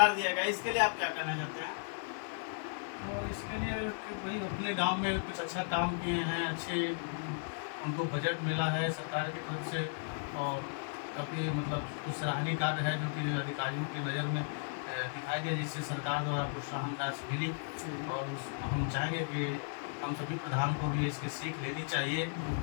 दिया गया, इसके लिए आप क्या करना चाहते हैं? तो इसके लिए कि भाई अपने गांव में कुछ अच्छा काम किए हैं, अच्छे उनको बजट मिला है सरकार की तरफ से और काफ़ी मतलब कुछ सराहनीय कार्य है जो कि अधिकारियों की नज़र में दिखाई दिया, जिससे सरकार द्वारा प्रोत्साहन राशि मिली। और हम चाहेंगे कि हम सभी प्रधान को भी इसकी सीख लेनी चाहिए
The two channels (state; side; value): silent; right; 54 dB below the other